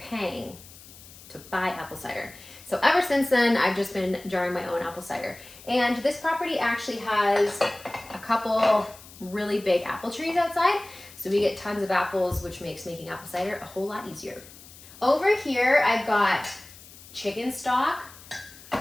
to buy apple cider. So ever since then, I've just been jarring my own apple cider. And this property actually has a couple really big apple trees outside. So we get tons of apples, which makes making apple cider a whole lot easier. Over here, I've got chicken stock,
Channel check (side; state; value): left; noise; hiss, 20 dB below the sound